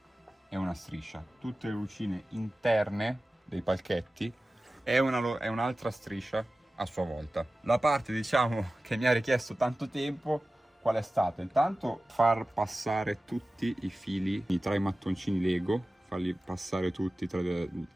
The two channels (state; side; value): normal; both; correlation 0.96